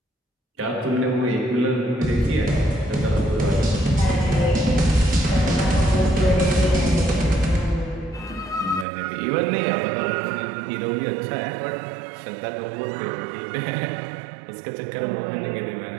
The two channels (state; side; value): drops out; left; at 8.8 s